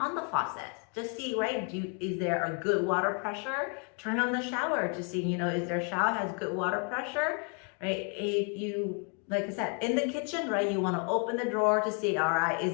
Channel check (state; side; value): quieter; right; 38.8 dB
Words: the faucet. Just see, right? Is there a good water pressure? Turn on the shower to see, is their shower has good water pressure, right? If you, like I said, in the kitchen, right? You want to open the drawer to see, all right, is